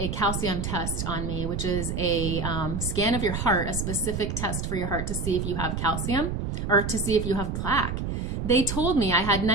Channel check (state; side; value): noise; right; rumble, 3 dB below the sound